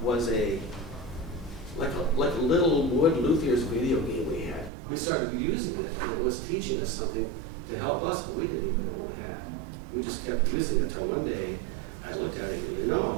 a like a little wood luthier's video game we had. We started using it, and it was teaching us something to help us, but we didn't even know what we had. We just kept using it until one day I looked at it and, you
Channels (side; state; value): left; drops out; at 4.7 s